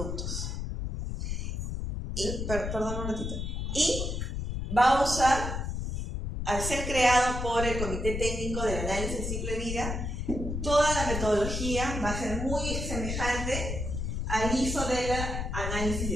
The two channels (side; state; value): left; noise; rumble, 3 dB below the sound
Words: Y, perdón un ratito. Y va a usar, al ser creado por el Comité Técnico del Análisis del Ciclo de Vida, toda la metodología va a ser muy semejante al ISO del